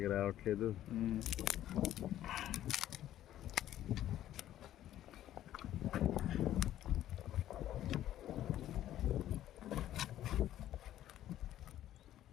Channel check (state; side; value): quieter; right; 12.5 dB